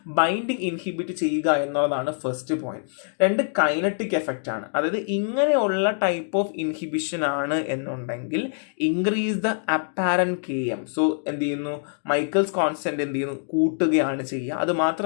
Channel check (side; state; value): right; silent; digital silence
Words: ബൈൻഡിങ് ഇൻഹിബിറ്റ് ചെയ്യുക എന്നുള്ളതാണ് ഫസ്റ്റ് പോയിന്റ്. 2 കൈനറ്റിക് എഫക്റ്റ് ആണ്. അതായത് ഇങ്ങനെയുള്ള ടൈപ്പ് ഓഫ് ഇൻഹിബിഷൻ ആണ് എന്നുണ്ടെങ്കിൽ increase the apparent km. So എന്ത് ചെയ്യുന്നു, മൈക്കിൾസ് കോൺസ്റ്റന്റ് എന്ത് ചെയ്യുന്നു, കൂട്ടുകയാണ് ചെയ്യുക. അത്